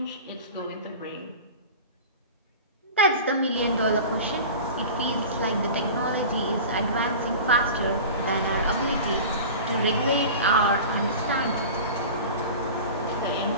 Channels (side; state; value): both; inverted; correlation -0.35